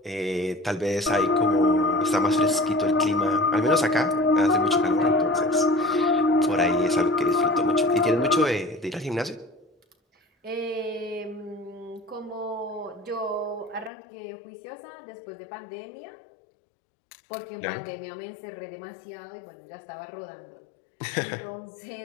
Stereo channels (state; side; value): drops out; right; at 13.9 s